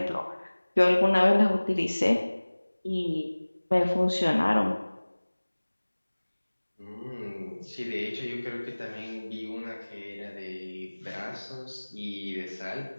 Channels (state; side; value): inverted; both; correlation -1.00